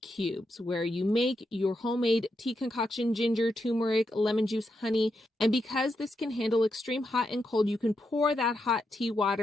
where you make your homemade tea concoction, ginger, turmeric, lemon juice, honey. And because this can handle extreme hot and cold, you can pour that hot tea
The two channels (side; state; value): both; normal; correlation 0.84